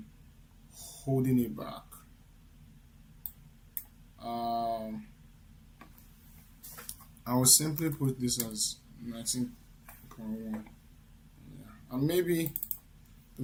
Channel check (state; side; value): identical; both; correlation 1.00